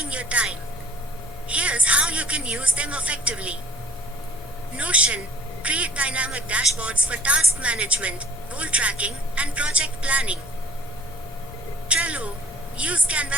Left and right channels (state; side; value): normal; both; correlation 0.51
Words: your time. Here's how you can use them effectively. Notion: create dynamic dashboards for task management, goal tracking, and project planning. Trello: use